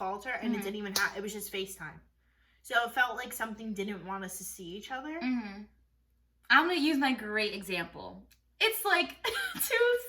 her, and it didn't even it was just FaceTime. So it felt like something didn't want us to see each other. I'm going to use my great example. It's like 2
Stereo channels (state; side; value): identical; both; correlation 1.00